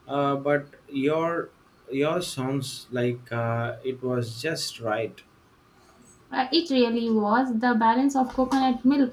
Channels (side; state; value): both; identical; correlation 1.00